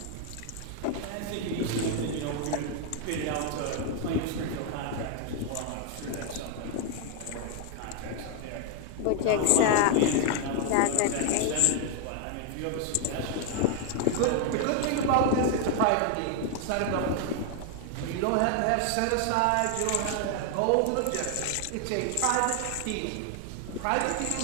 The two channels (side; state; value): both; different; correlation 0.00